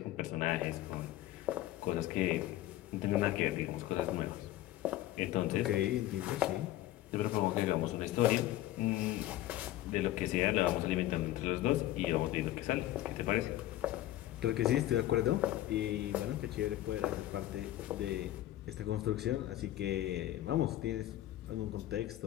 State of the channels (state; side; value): quieter; right; 14.5 dB